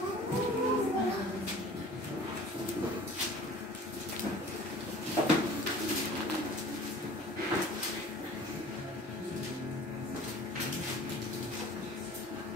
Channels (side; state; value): both; normal; correlation 0.46